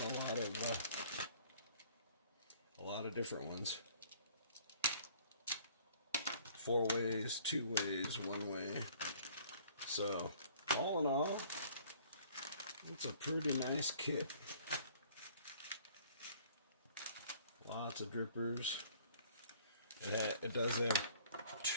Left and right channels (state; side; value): inverted; both; correlation -0.55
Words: a lot of different ones. 4 ways, 2 ways, 1 way. So all in all, it's a pretty nice kit. Lots of drippers. It does have